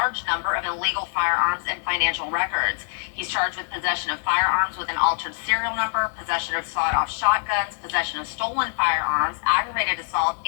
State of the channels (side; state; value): right; silent; 62 dB below the other